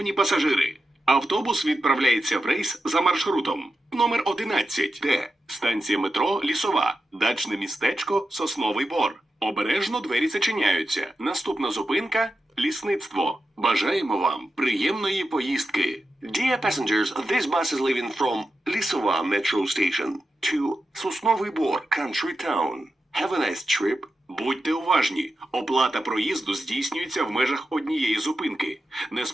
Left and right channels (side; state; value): both; normal; correlation 0.90